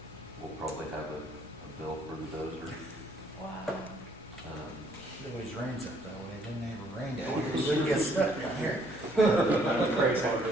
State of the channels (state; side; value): normal; both; correlation 0.65